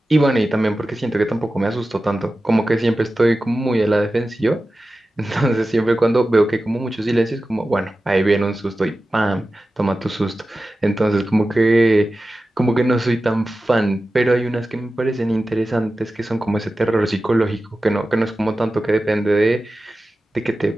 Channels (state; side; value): normal; both; correlation 0.94